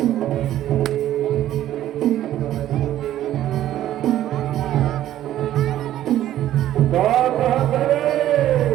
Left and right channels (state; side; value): quieter; left; 12.7 dB